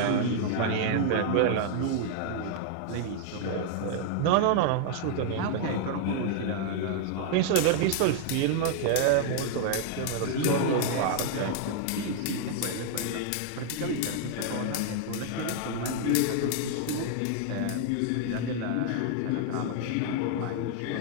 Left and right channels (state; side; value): different; both; correlation -0.01